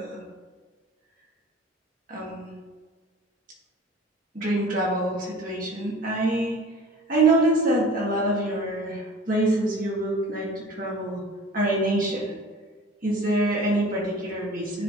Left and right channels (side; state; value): both; normal; correlation 0.43